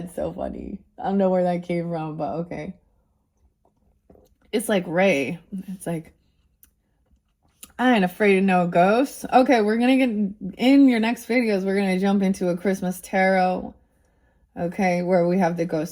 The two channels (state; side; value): identical; both; correlation 1.00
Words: so funny. I don't know where that came from, but okay. It's like Ray. It's like I ain't afraid of no ghosts. Okay, we're gonna get in your next videos. We're gonna jump into a Christmas tarot. Okay, where we have the